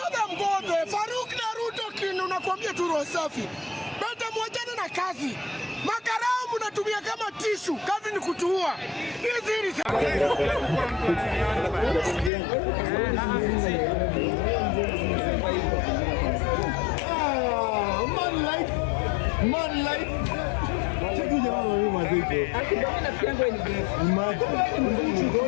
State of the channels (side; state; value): right; drops out; at 12.3 s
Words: Mbodo, Faruq na Ruto kinu nakwambia tu roho safi. Beta mwachane na kazi. Makarao mnatumia kama tishu, kazi ni kutuua. Hizi ni man life. Check you jamaa wewe mazee. Akidona piango ni best. Imagine. Go